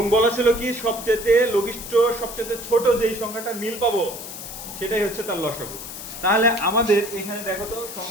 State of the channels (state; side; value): noise; left; hiss, 10 dB below the sound